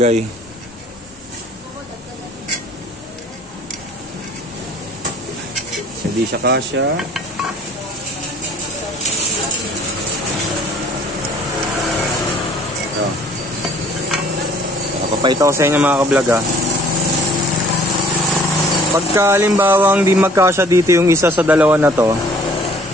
Hindi siya kasya. Ito. Papakita ko sa inyo mga ka-vlog ha. Pagka halimbawang di magkasya dito yung isa sa dalawa na to.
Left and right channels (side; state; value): both; normal; correlation 0.55